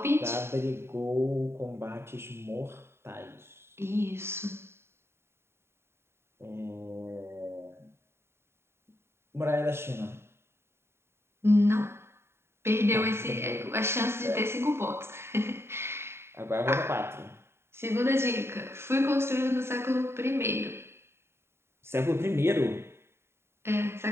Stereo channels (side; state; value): left; late; 0.12 ms